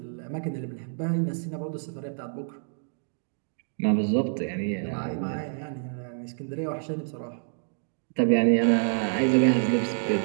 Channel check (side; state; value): left; silent; digital silence